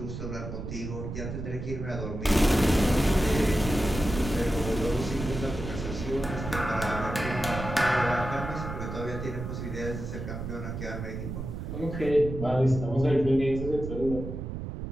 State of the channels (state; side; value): noise; right; rumble, 7 dB below the sound